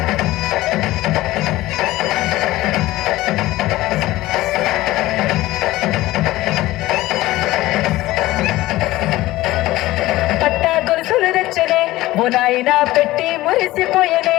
పట్టా గొలుసులు తెచ్చనే ఓ నాయన పెట్టి మురిసిపోయనే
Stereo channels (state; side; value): quieter; right; 17.4 dB